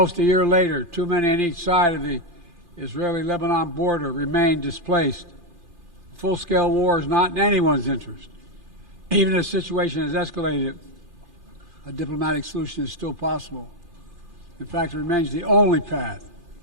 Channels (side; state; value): left; late; 2.4 ms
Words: a year later, too many on each side of the Israeli-Lebanon border remain displaced. Full-scale war is not in anyone's interest. Even if the situation has escalated, a diplomatic solution is still possible. In fact, it remains the only path